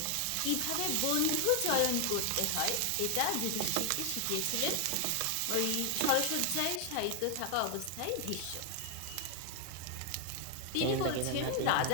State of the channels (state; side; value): different; both; correlation 0.00